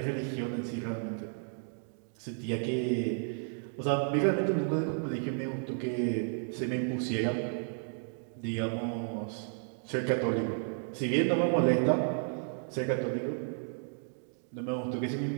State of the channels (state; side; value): silent; left; 56 dB below the other